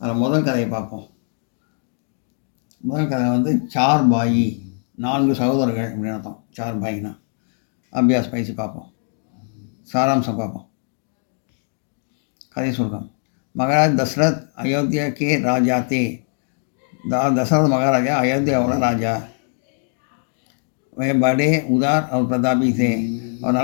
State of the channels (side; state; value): right; silent; 60 dB below the other